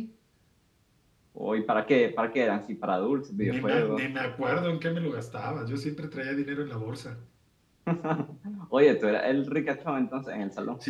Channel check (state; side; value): identical; both; correlation 1.00